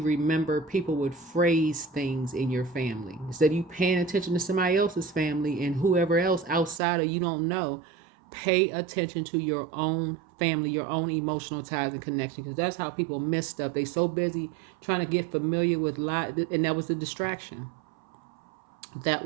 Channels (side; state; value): left; drops out; at 6.8 s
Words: remember people would phrase things in your family. Instead of you paying attention to somebody else's family and whoever else outside of you don't know, pay attention to your own family, your own emotional ties and connection, because that's how people miss stuff. They so busy trying to get familiar with life, and that was the distraction. That